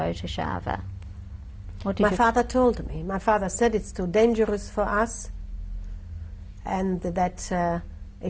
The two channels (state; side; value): identical; both; correlation 1.00